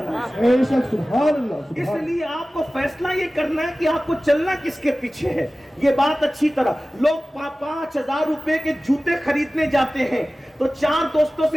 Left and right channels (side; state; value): both; normal; correlation 0.97